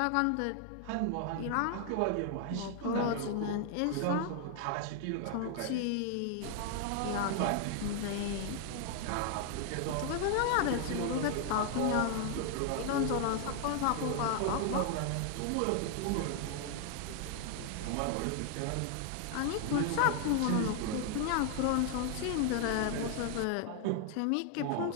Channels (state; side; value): different; both; correlation 0.00